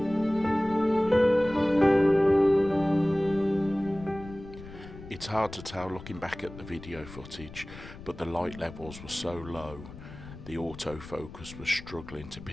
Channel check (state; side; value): noise; left; rumble, 15 dB below the sound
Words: It's hard to tell looking back at the video footage, but the light levels were so low, the autofocus was struggling to